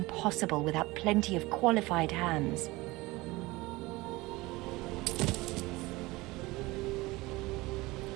without plenty of qualified hands.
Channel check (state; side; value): quieter; left; 21.2 dB